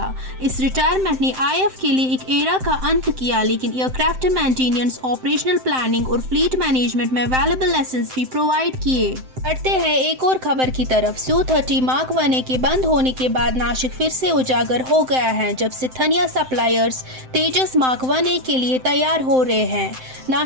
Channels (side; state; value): left; late; 7.8 ms